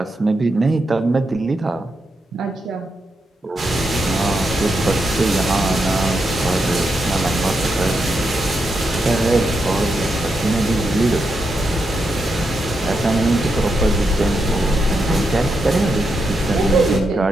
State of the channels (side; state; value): both; normal; correlation 0.84